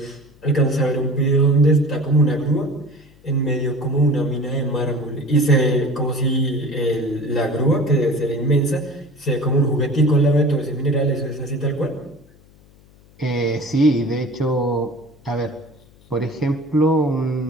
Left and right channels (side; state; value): left; noise; hum, 27 dB below the sound